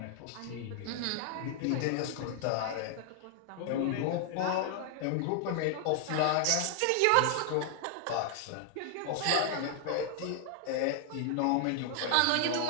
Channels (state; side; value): different; both; correlation 0.00